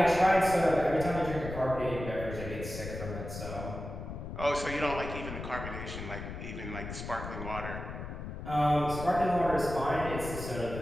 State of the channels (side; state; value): left; noise; rumble, 8 dB below the sound